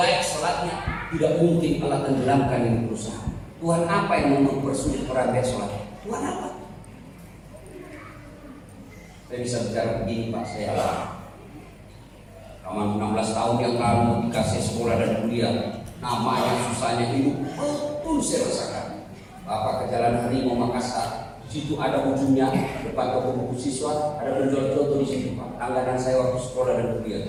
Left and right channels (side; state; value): both; identical; correlation 1.00